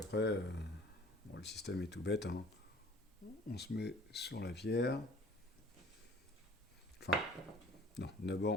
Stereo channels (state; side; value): normal; both; correlation 0.51